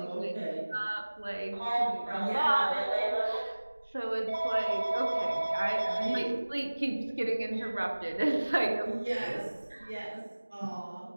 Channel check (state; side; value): inverted; both; correlation -1.00